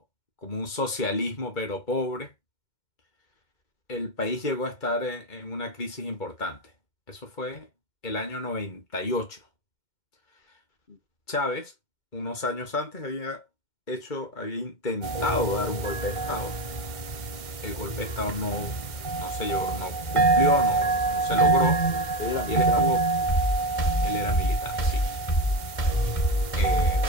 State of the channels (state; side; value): late; right; 2.1 ms